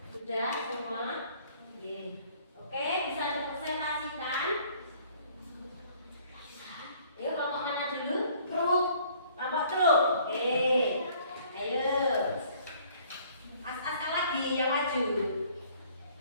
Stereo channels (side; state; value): both; inverted; correlation -0.58